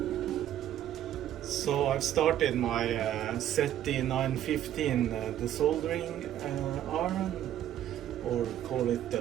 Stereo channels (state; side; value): quieter; left; 11.5 dB